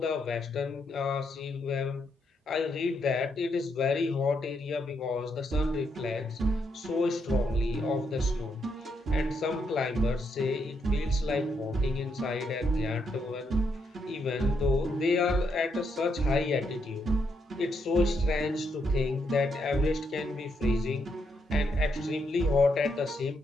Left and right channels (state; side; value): normal; both; correlation 0.78